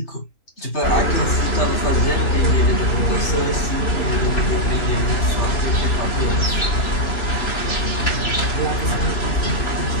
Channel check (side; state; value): right; late; 2.9 ms